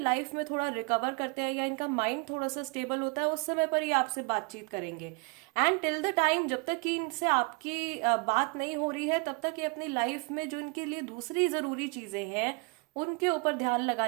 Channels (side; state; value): left; quieter; 31.0 dB